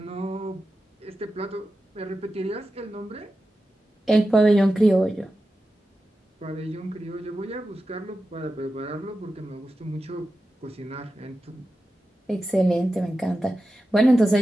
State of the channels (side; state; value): both; normal; correlation 0.92